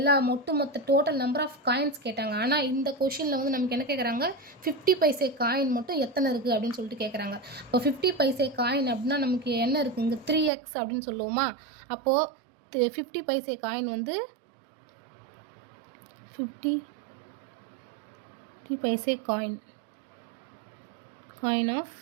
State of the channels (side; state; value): left; drops out; at 10.5 s